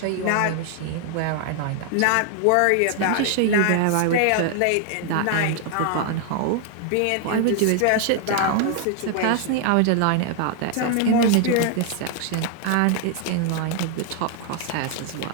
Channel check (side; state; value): both; different; correlation 0.00